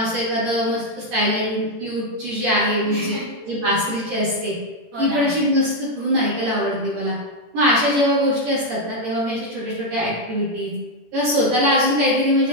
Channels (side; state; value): left; late; 18 ms